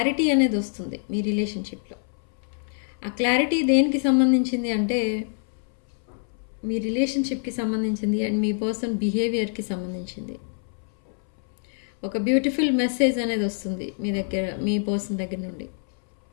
అనేది వస్తుంది మీ రిలేషన్షిప్లో. ఆ క్లారిటీ దేనికి సంబంధించింది అంటే, మీ రిలేషన్షిప్కి సంబంధించింది అండ్ మీ పర్సన్ బిహేవియర్కి సంబంధించింది. ఒక బ్యూటిఫుల్ మెసేజ్ అనేది వస్తుంది మీ దగ్గర, మీ పర్సన్ దగ్గర నుండి.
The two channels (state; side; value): silent; right; 61 dB below the other